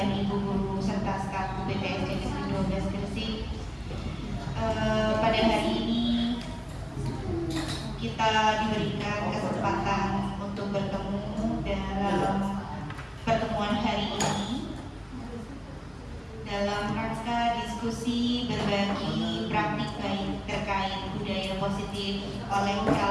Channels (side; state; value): both; identical; correlation 1.00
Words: Ibu guru serta staf BTS Negeri 12 Gresik. Pada hari ini kita diberikan kesempatan untuk bertemu dalam pertemuan hari ini dalam rangka diskusi berbagi praktik baik terkait budaya positif oleh